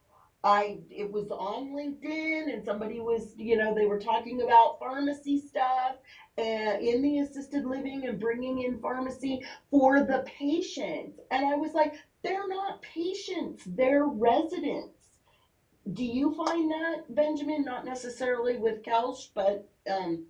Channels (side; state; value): both; identical; correlation 1.00